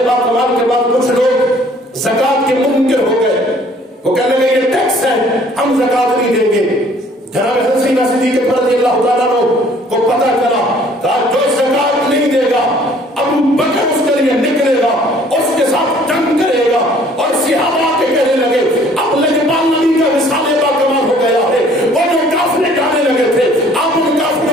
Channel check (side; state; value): both; normal; correlation 0.57